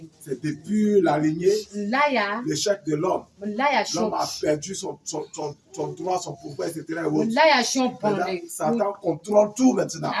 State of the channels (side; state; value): both; identical; correlation 1.00